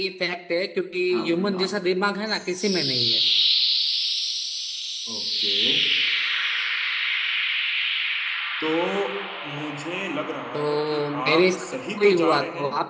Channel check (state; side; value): identical; both; correlation 1.00